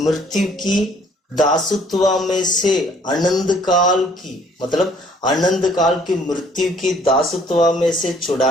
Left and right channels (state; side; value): normal; both; correlation 0.60